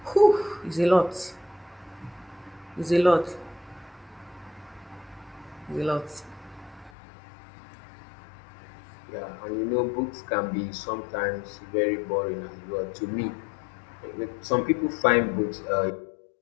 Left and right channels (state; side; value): drops out; right; at 6.9 s